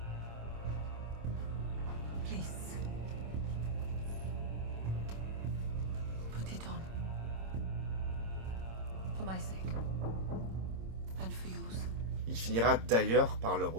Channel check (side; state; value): left; late; 26 ms